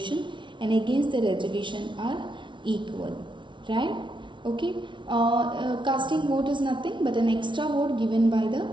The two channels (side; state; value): left; late; 0.24 ms